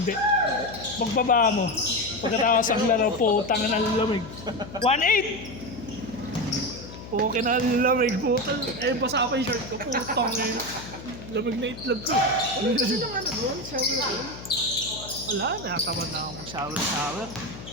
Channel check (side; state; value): left; noise; hum, 14 dB below the sound